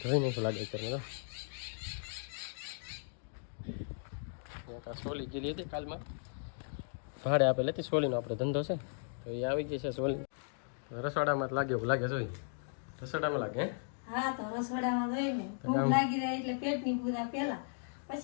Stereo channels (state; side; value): silent; right; digital silence